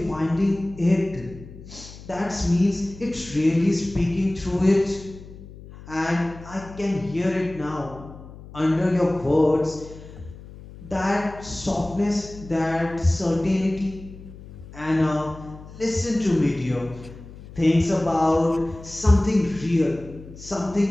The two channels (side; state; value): left; noise; hum, 17 dB below the sound